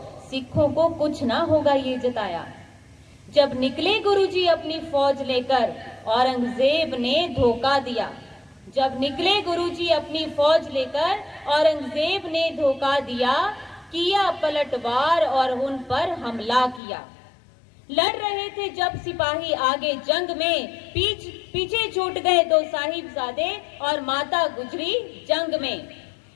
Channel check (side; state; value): right; drops out; at 16.8 s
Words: सिखों को कुछ ना होगा ये जताया। जब निकले गुरुजी अपनी फौज लेकर, औरंगजेब ने धोखा दिया। जब निकले गुरुजी अपनी फौज लेकर, औरंगजेब ने धोखा दिया। किया पलटवार और उन पर हमला किया। लड़ रहे थे जब सिपाही आगे जंग में, पीछे छूट गए 2 साहिबजादे और माता गुजरी जंग में।